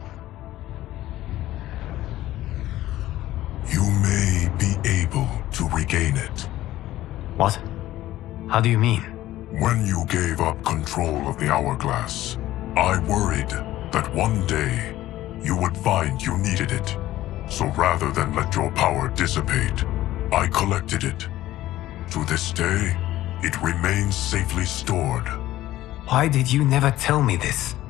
You may be able to regain it. What? How do you mean? When you gave up control of the Hourglass, I worried that one day you would find you needed it. So rather than let your power dissipate, I collected it. To this day, it remains safely stored. Why did you never tell me this?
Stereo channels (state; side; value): quieter; right; 15.0 dB